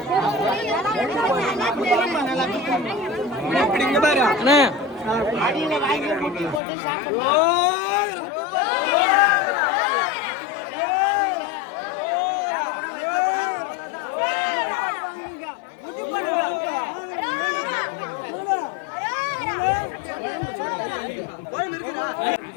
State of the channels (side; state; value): right; drops out; at 6.6 s